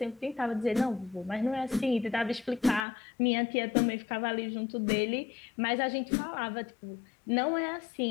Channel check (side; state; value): right; drops out; at 2.9 s